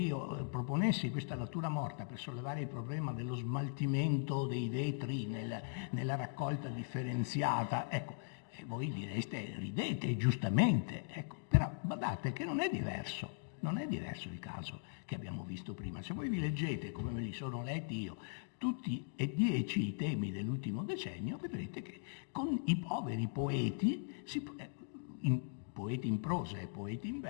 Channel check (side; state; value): right; silent; digital silence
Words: proponessi questa natura morta per sollevare il problema dello smaltimento dei vetri nella raccolta differenziata, ecco, e voi direste, ridete giustamente, ecco, però badate che non è diverso il caso che abbiamo visto prima. Se voi vi leggete, come me li sono letti io, tutti e 10 i temi dell'ultimo decennio, vedrete che con i poveri poeti, poeti in prosa e poeti in